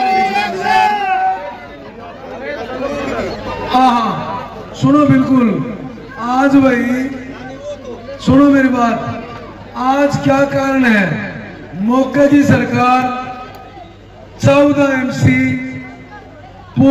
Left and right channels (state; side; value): identical; both; correlation 1.00